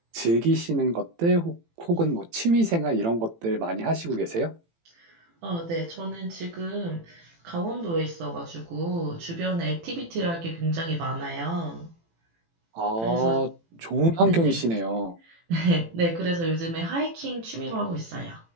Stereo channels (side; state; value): left; late; 18 ms